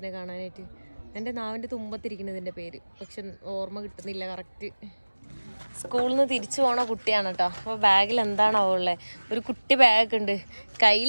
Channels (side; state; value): both; inverted; correlation -1.00